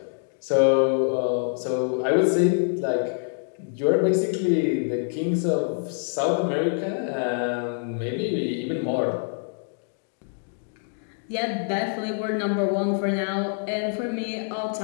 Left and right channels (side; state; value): right; silent; digital silence